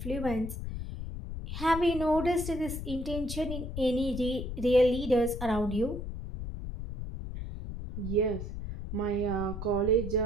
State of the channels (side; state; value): left; noise; rumble, 7 dB below the sound